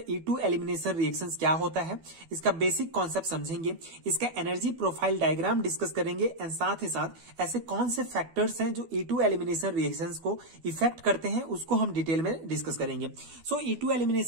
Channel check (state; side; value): late; left; 12 ms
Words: E2 एलिमिनेशन रिएक्शंस क्या होता है, इसका बेसिक कॉन्सेप्ट समझेंगे, इसका एनर्जी प्रोफाइल डायग्राम डिस्कस करेंगे एंड साथ ही साथ ऐसे कौन से फैक्टर्स हैं जो E2 एलिमिनेशन रिएक्शंस को इफेक्ट करते हैं, उसको हम डिटेल में डिस्कस करेंगे। सो E2